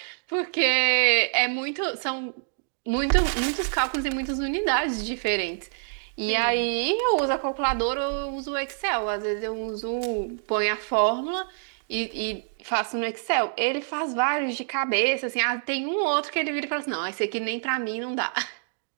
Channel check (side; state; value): left; silent; digital silence